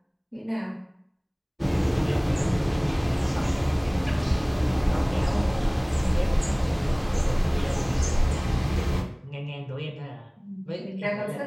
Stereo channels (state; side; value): identical; both; correlation 1.00